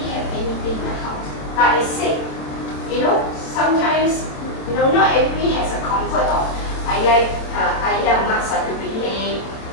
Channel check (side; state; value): right; late; 27 ms